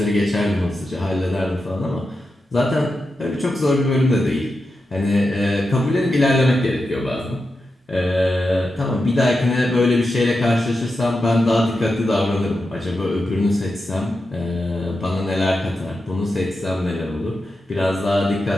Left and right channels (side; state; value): both; normal; correlation 0.89